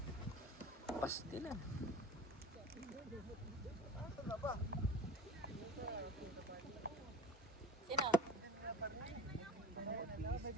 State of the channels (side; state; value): both; normal; correlation 0.36